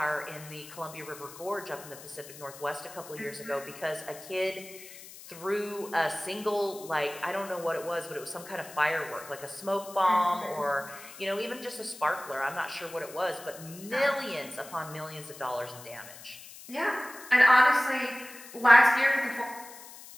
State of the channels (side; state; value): left; noise; hiss, 16 dB below the sound